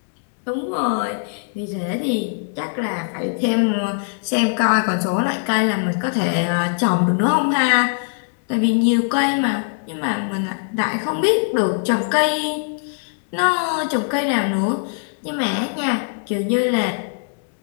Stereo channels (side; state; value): right; silent; digital silence